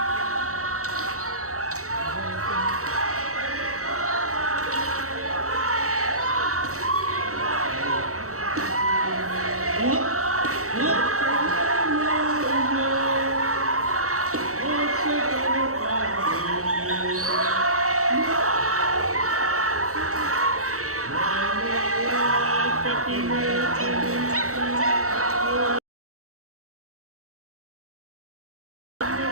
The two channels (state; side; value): late; left; 0.64 ms